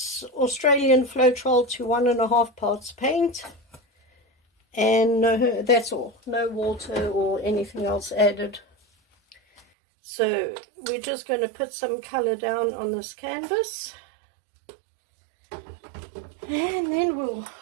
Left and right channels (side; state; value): left; drops out; at 9.6 s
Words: Australian Floetrol to 1.5 parts paint, and that's all, no water or anything else added. So we're just going to put some color down on this canvas, and then we'll